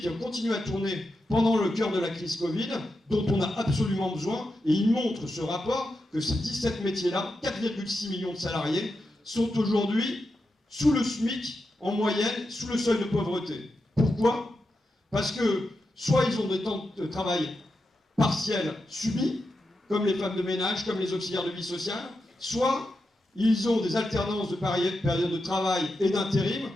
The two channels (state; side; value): normal; both; correlation 0.88